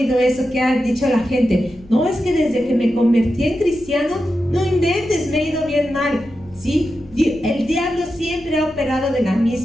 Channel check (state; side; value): noise; left; hum, 23 dB below the sound